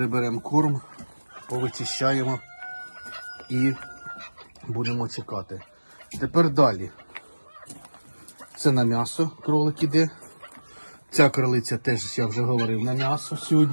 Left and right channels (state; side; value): inverted; both; correlation -1.00